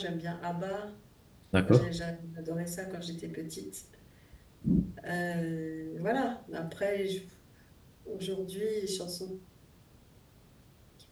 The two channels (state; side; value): identical; both; correlation 1.00